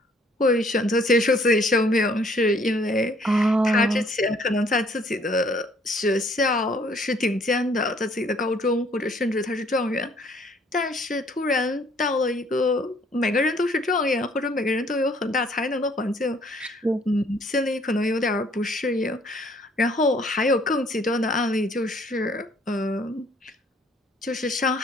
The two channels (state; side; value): normal; both; correlation 0.61